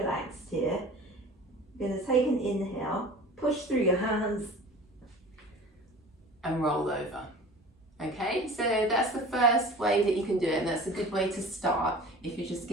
here. You're going to take an inhale, push through your hands and roll over. Okay, so that's the first way that you can do it, and that's a good way to start if you're just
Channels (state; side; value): normal; both; correlation 0.40